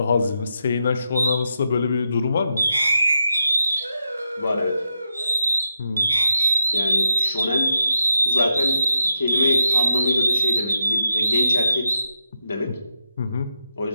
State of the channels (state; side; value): inverted; both; correlation -0.84